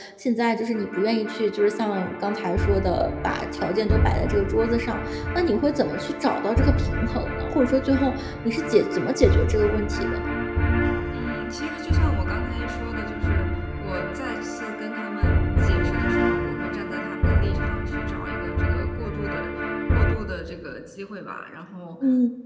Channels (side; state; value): both; identical; correlation 1.00